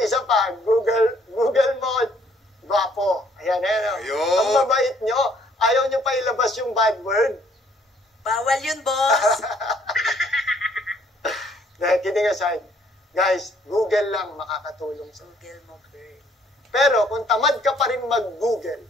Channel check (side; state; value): both; normal; correlation 0.64